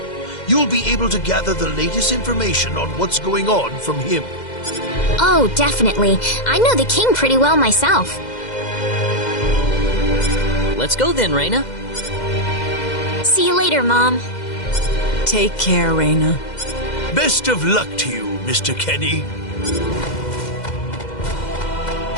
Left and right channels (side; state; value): right; late; 2.0 ms